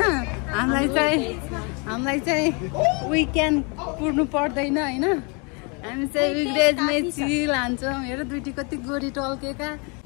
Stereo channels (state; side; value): quieter; right; 32.8 dB